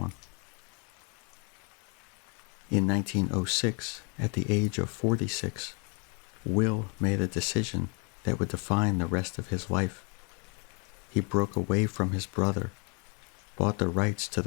In 1906, at the age of 46, Will made a decision that would define the rest of his life. He broke away from his brother, bought the rights to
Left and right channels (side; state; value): right; quieter; 35.4 dB